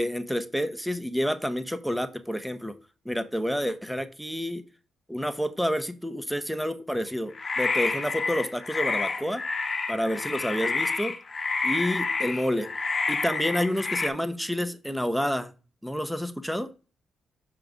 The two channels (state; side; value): normal; both; correlation 0.95